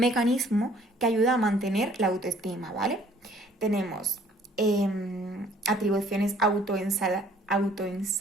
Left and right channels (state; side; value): normal; both; correlation 0.58